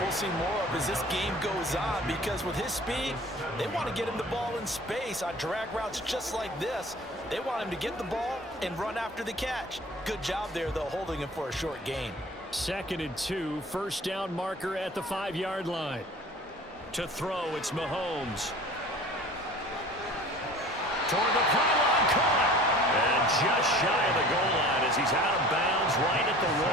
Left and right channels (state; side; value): normal; both; correlation 0.44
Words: we'll see more of as this game goes on, because with his speed, they want to get him the ball in space on drag routes just like this. They want him to get the ball and run after the catch. Good job there, though, holding him for a short gain. 2nd and 2, first down marker at the 5-yard line. To throw, it's Mahomes. Toward the pylon, caught. And just shy of the goal line as he's out of bounds right at the